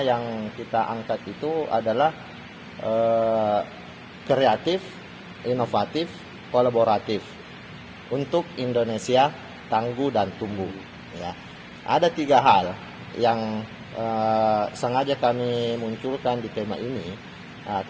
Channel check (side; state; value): both; identical; correlation 1.00